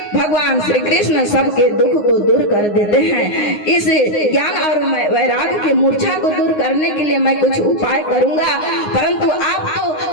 भगवान श्री कृष्ण सबके दुख को दूर कर देते हैं। इस ज्ञान और वैराग की मूर्छा को दूर करने के लिए मैं कुछ उपाय करूंगा, परंतु आप तो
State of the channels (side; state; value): right; late; 9.6 ms